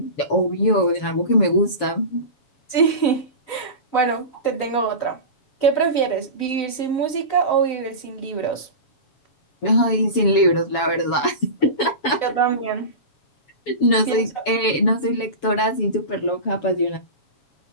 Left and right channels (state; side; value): late; right; 7.1 ms